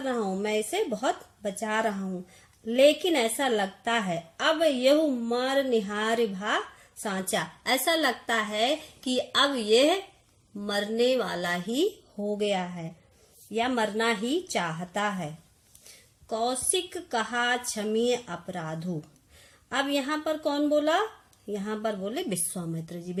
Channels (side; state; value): both; identical; correlation 1.00